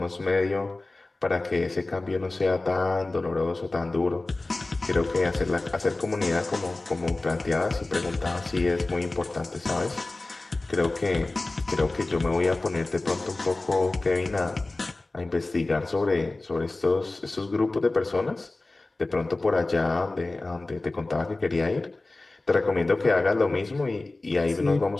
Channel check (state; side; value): quieter; right; 3.1 dB